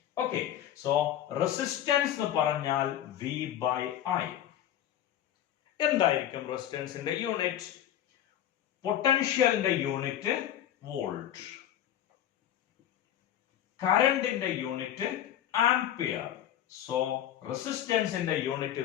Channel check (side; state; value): right; quieter; 11.2 dB